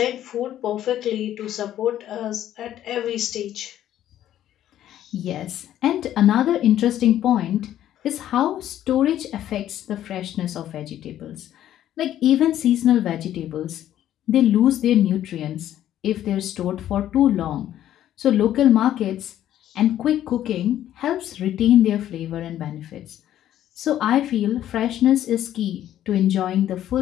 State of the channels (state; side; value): quieter; right; 11.9 dB